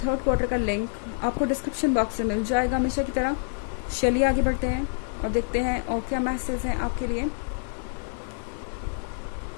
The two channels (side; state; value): right; silent; digital silence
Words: थर्ड क्वार्टर का लिंक आपको डिस्क्रिप्शन बॉक्स में मिल जाएगा हमेशा की तरह। चलिए आगे बढ़ते हैं और देखते हैं और क्या मैसेज हैं आपके लिए।